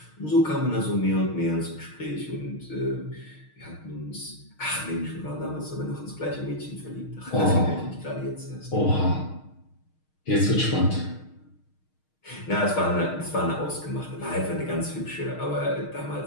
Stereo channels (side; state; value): right; late; 6.5 ms